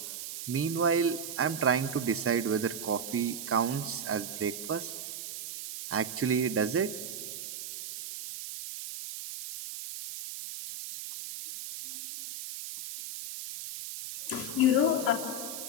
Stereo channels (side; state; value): right; noise; hiss, 8 dB below the sound